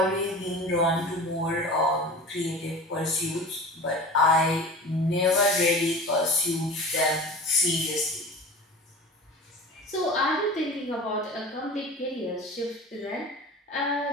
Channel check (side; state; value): both; normal; correlation 0.36